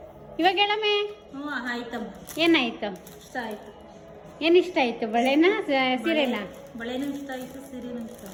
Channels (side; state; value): both; identical; correlation 1.00